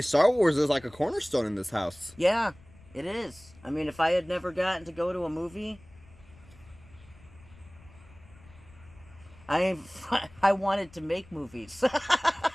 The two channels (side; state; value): left; noise; rumble, 24 dB below the sound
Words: Star Wars is like a cornerstone in this house. Yeah, it is. I mean, if I had never gotten to go to a movie... I wanted to make movies.